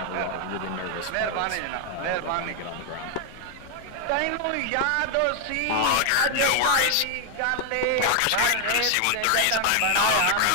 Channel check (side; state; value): both; different; correlation 0.00